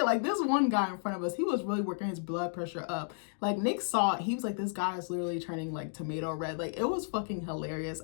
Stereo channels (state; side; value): silent; right; digital silence